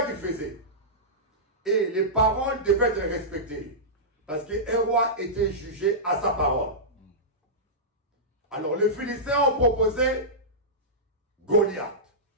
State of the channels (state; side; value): normal; both; correlation -0.15